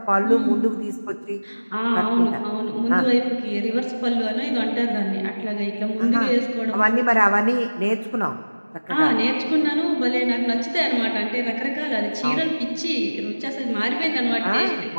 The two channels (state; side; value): inverted; both; correlation -1.00